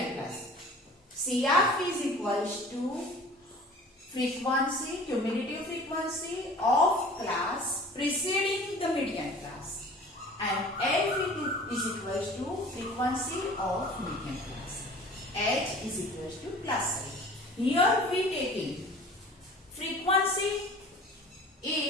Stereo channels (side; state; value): both; normal; correlation 0.44